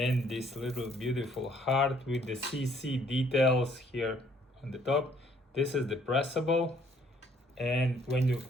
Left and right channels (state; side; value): normal; both; correlation 0.63